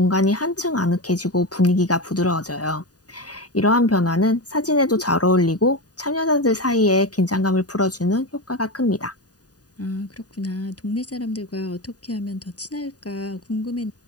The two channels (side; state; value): right; late; 0.68 ms